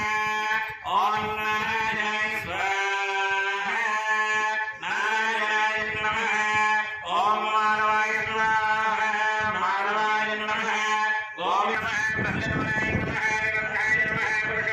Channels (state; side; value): identical; both; correlation 1.00